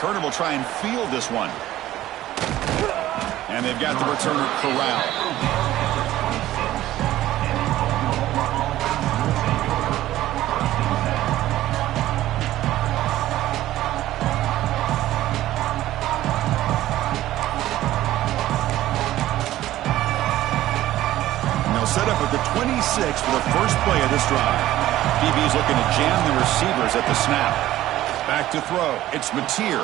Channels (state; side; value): quieter; left; 14.5 dB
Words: will try and field this one. And they've got the returner corralled. Set up at the 26 for the first play of this drive. DB's looking to jam the receivers at the snap. Back to throw. It's Mateer.